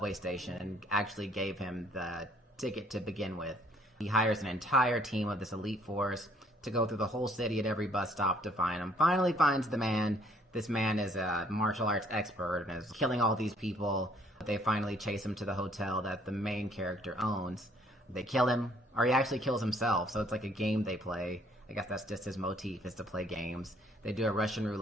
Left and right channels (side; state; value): both; normal; correlation 0.62